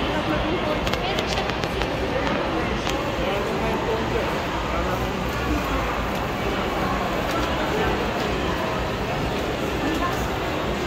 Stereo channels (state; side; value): identical; both; correlation 1.00